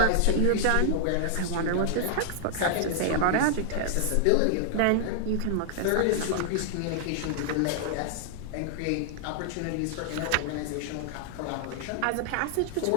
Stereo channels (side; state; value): both; different; correlation -0.01